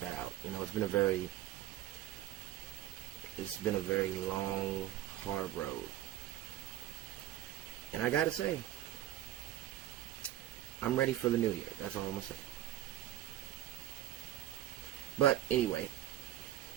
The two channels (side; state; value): left; quieter; 13.2 dB